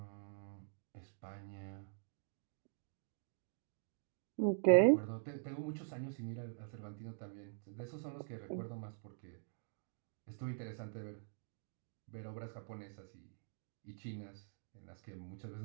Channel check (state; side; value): silent; left; digital silence